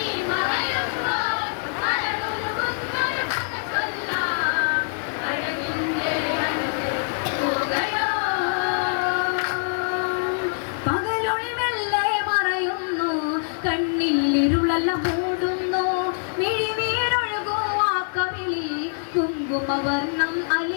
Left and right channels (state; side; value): silent; right; 62 dB below the other